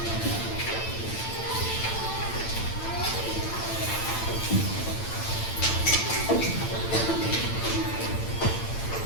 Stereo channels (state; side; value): late; right; 8.9 ms